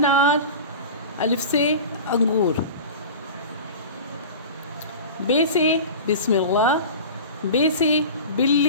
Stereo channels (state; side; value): inverted; both; correlation -0.34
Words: अलिफ से अंगूर। बे से बिस्मिल्लाह, बे से